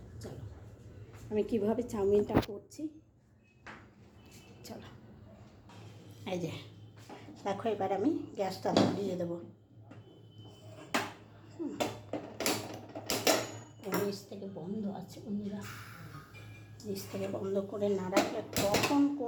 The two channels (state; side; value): identical; both; correlation 1.00